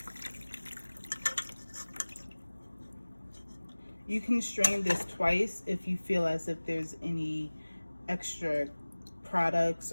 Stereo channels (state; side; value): inverted; both; correlation -1.00